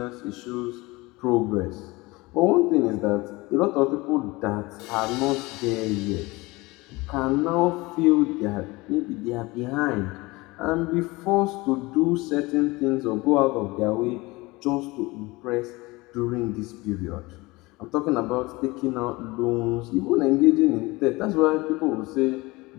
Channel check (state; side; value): quieter; right; 22.5 dB